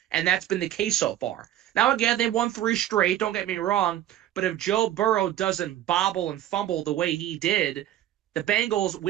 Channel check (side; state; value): left; quieter; 12.5 dB